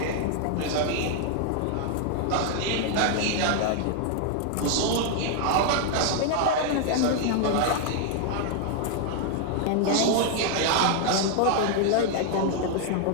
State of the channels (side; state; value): both; different; correlation 0.00